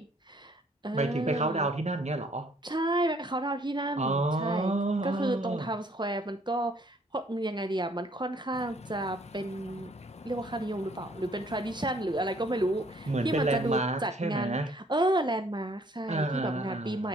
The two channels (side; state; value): both; normal; correlation 0.62